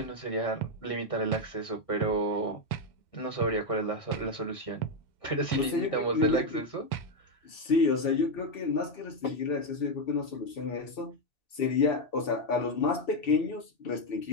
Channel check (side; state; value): right; late; 2.7 ms